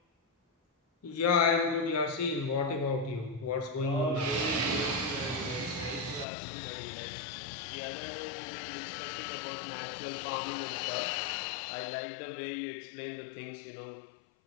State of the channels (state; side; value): drops out; right; at 6.2 s